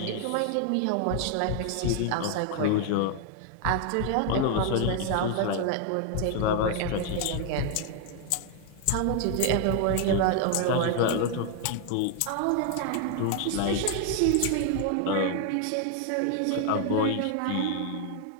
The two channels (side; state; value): both; different; correlation 0.00